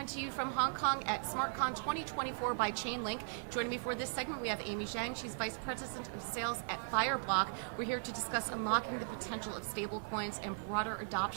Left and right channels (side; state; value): left; silent; digital silence